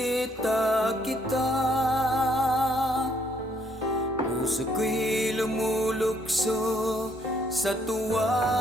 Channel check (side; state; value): both; normal; correlation 0.69